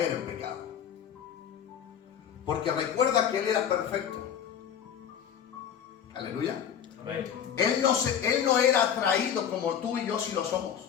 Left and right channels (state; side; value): quieter; right; 8.7 dB